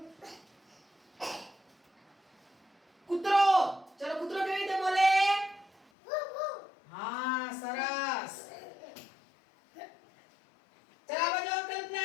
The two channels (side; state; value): right; drops out; at 5.9 s